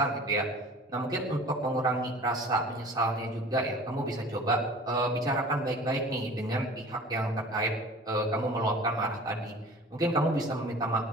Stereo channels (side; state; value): both; normal; correlation 0.43